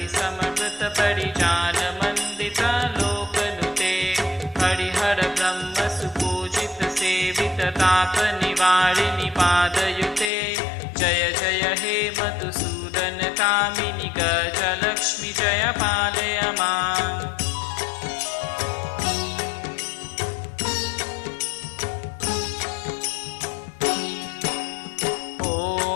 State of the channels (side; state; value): right; drops out; at 10.3 s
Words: समवृत परिजान मंदित लोकनुते हरिहर ब्रह्म सुपूजित सेवित ताप निवारिणि पादयुते जय जय हे मधुसूदन कामिनि गजलक्ष्मी जय पालय माम्।